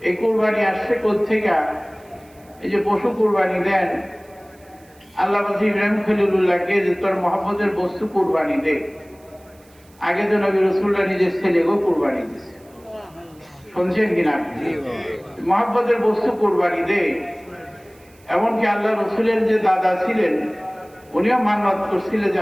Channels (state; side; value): noise; right; hiss, 30 dB below the sound